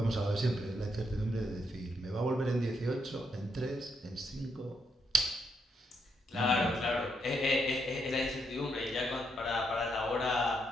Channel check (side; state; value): both; normal; correlation 0.78